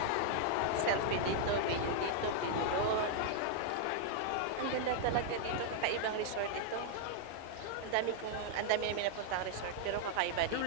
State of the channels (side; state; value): both; different; correlation -0.01